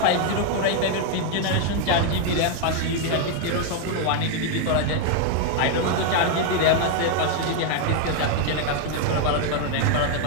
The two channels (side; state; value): both; different; correlation 0.00